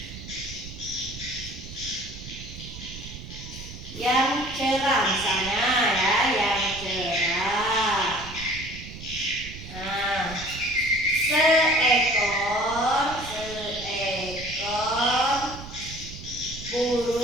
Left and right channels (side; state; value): right; noise; rumble, 12 dB below the sound